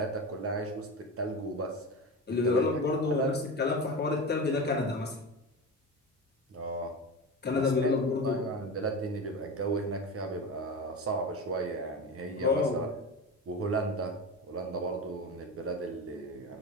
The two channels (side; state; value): both; normal; correlation 0.25